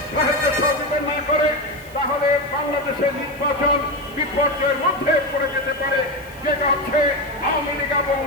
সহযোগিতা না করে, তাহলে বাংলাদেশের নির্বাচন বিপর্যয়ের মধ্যে পড়ে যেতে পারে, যেটা হচ্ছে আওয়ামী লীগ এবং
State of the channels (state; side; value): noise; right; hiss, 24 dB below the sound